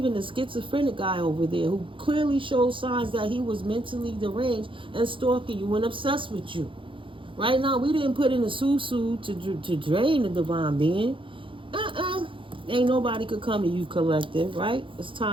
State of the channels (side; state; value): left; late; 0.25 ms